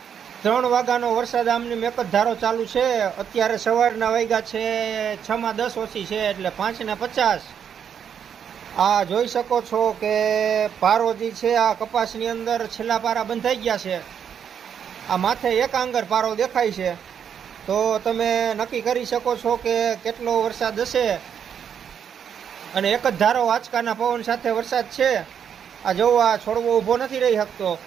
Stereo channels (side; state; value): left; quieter; 8.1 dB